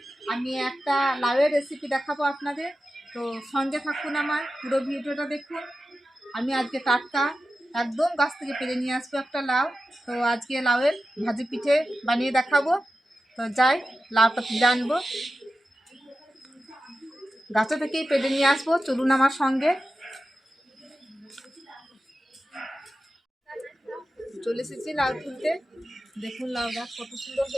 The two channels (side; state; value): both; normal; correlation 0.93